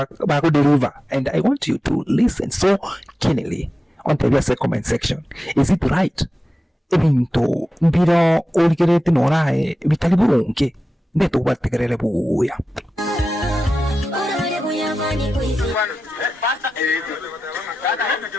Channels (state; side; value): normal; both; correlation 0.93